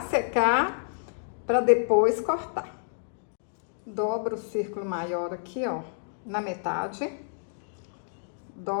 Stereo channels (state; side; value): silent; right; digital silence